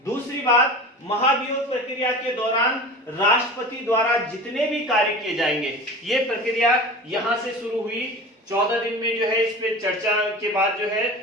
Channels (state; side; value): normal; both; correlation 0.34